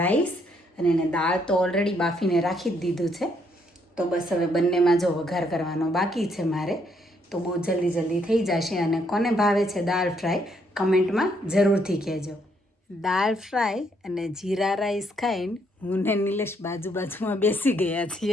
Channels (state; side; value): normal; both; correlation 0.71